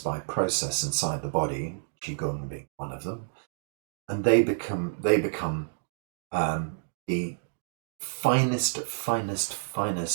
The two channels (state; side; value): silent; left; digital silence